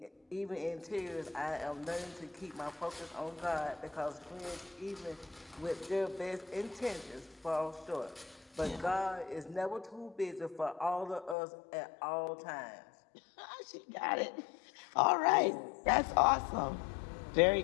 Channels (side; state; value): right; drops out; at 11.4 s